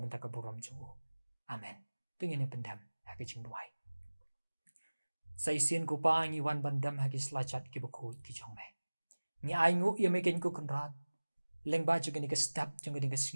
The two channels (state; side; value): inverted; both; correlation -1.00